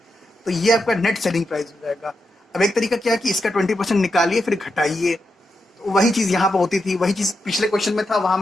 तो ये आपका नेट सेलिंग प्राइस हो जाएगा। अब एक तरीका क्या है कि इसका 20% निकालिए फिर घटाइए। तो वही चीज़ यहाँ पर होती थी, वही चीज़ पिछले क्वेश्चन में था, वहाँ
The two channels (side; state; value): both; normal; correlation 0.86